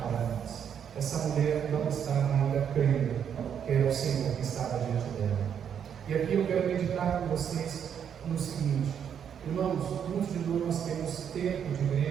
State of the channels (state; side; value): quieter; left; 8.3 dB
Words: nós. Essa mulher não estava ainda crendo que era o Senhor que estava diante dela. E aqui eu quero meditar com vocês no seguinte, irmãos, muitos de nós temos tempo de